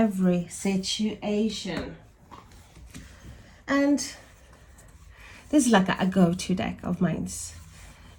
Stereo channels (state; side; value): identical; both; correlation 1.00